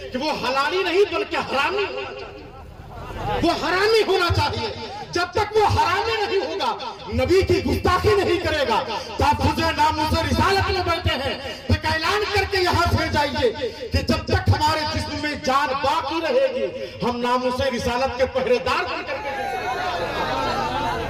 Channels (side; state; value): both; identical; correlation 1.00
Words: کہ وہ حلالی نہیں بلکہ حرامی ہونا چاہیے، وہ حرامی ہونا چاہیے۔ جب تک وہ حرامی نہیں ہوگا نبی کی گستاخی نہیں کرے گا۔ تحفظ ناموس رسالت میں بیٹھے ہیں تو اعلان کر کے یہاں سے جائیے کہ جب تک ہمارے جسم میں جان باقی رہے گی ہم ناموس رسالت کے پہرے دار بن کر کے